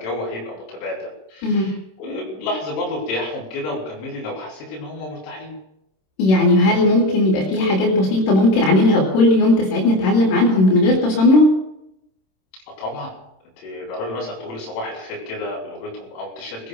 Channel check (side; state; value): right; late; 26 ms